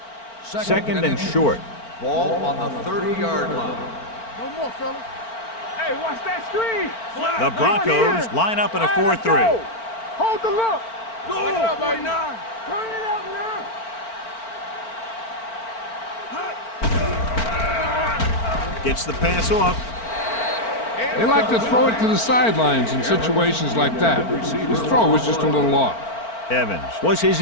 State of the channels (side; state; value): right; late; 4.4 ms